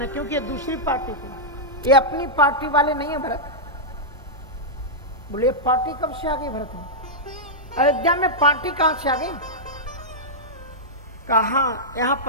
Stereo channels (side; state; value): both; normal; correlation -0.09